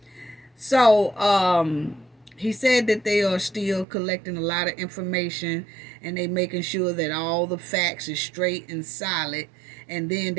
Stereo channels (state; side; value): drops out; left; at 3.9 s